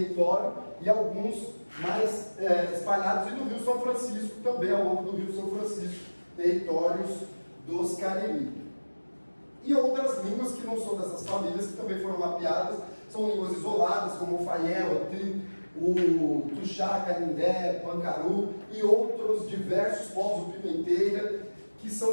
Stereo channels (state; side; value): inverted; both; correlation -1.00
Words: e alguns mais espalhados, e no Rio São Francisco também, ao longo do Rio São Francisco, territórios dos Cariri. E outras línguas que não são dessas famílias, que também foram mapeadas, são línguas isoladas, como o Faiel, o Tuxá, Canindé, Pancaru e outros diversos povos do Pimenteira, que